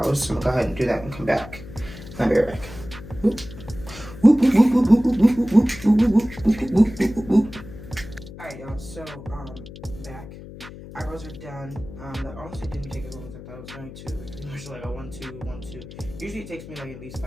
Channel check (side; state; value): left; noise; hum, 15 dB below the sound